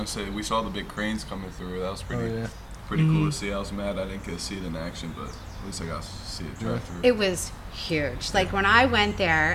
say we saw the big cranes coming through. That was pretty Oh, yeah. pretty cool to see. I was mad I didn't get to see it in action, but at least I got to see it drive through. It was huge. Like when I went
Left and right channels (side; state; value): both; identical; correlation 1.00